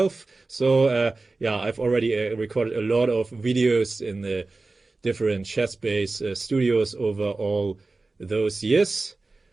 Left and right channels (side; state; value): left; quieter; 3.5 dB